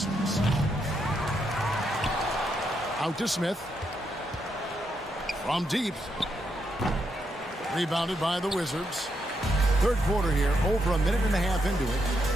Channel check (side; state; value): both; normal; correlation 0.80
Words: Out to Smith. From deep. Rebounded by the Wizards. Third quarter here, over a minute and a half into it.